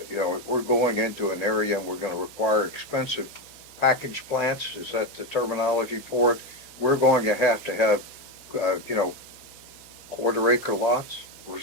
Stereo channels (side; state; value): right; noise; hum, 28 dB below the sound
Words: if we're going into an area and we're going to require expensive package plants, is that the terminology for it? We're going to have, quarter acre lots or